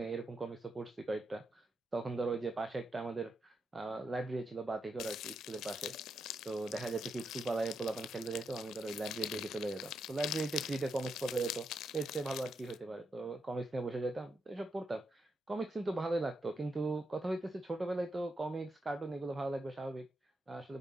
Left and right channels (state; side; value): normal; both; correlation 0.82